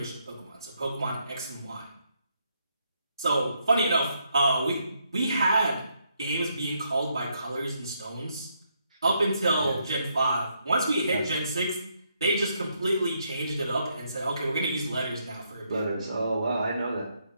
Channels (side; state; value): both; inverted; correlation -0.76